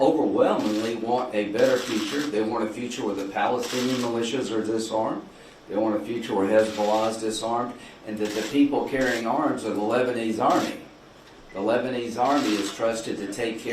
want a better future. They want a future where the Palestinian militias are disarmed. They want a future where Hezbollah is disarmed, and that the people carrying arms are the Lebanese army. The Lebanese army is trusted to take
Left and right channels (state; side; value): identical; both; correlation 1.00